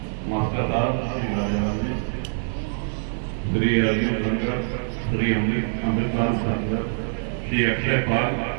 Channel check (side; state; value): left; silent; 62 dB below the other